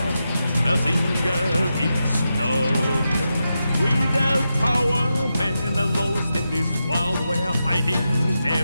Mazinger is not. Without power, men are lost in this world where fighting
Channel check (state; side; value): inverted; both; correlation -0.88